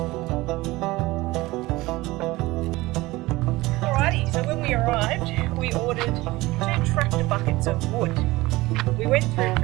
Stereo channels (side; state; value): left; quieter; 19.9 dB